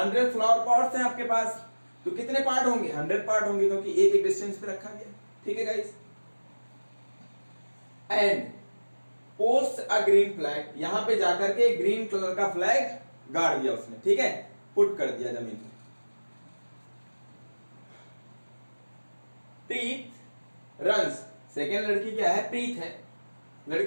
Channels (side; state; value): both; inverted; correlation -1.00